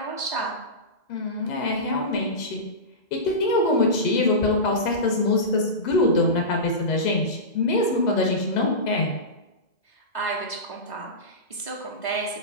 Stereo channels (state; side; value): late; right; 2.0 ms